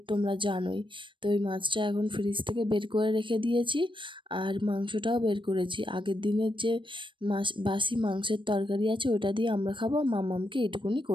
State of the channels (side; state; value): left; late; 0.24 ms